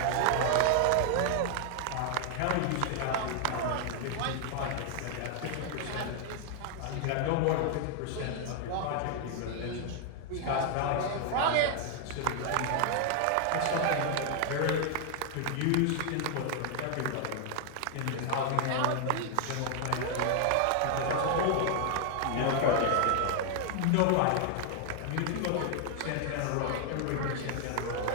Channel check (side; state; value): both; different; correlation 0.00